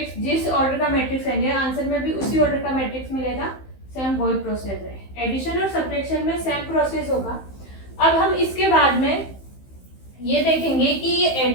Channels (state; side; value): late; right; 15 ms